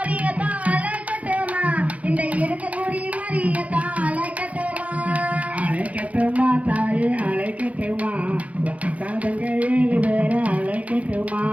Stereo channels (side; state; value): left; late; 0.068 ms